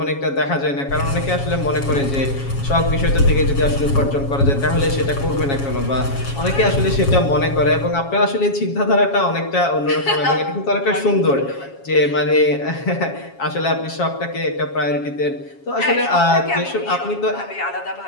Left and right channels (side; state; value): right; late; 7.3 ms